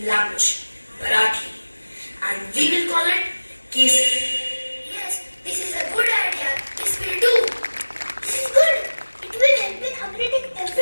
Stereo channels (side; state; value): both; inverted; correlation -1.00